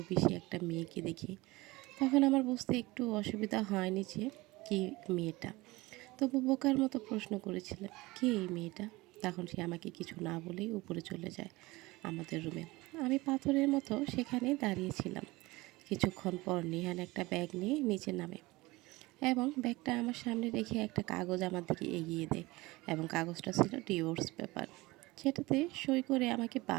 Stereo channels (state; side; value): quieter; left; 21.2 dB